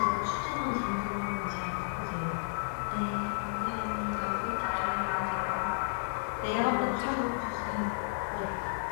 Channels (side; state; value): right; silent; 56 dB below the other